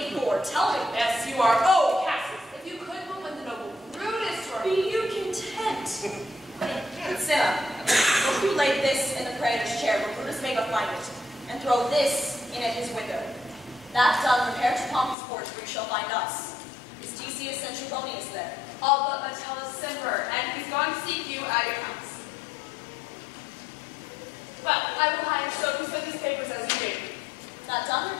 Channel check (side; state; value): right; drops out; at 15.2 s